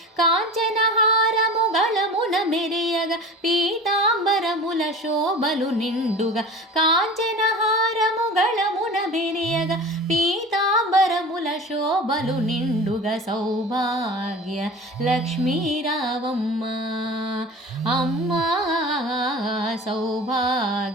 కాంచనహారము గళమున మెరియగా పీతాంబరముల శోభలు నిండుగా కాంచనహారము గళమున మెరియగా పీతాంబరముల శోభలు నిండుగా సౌభాగ్య లక్ష్మీ రావమ్మ అమ్మా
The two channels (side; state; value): both; normal; correlation 0.36